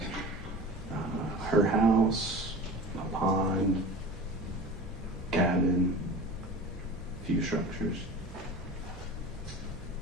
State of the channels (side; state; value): both; normal; correlation 0.35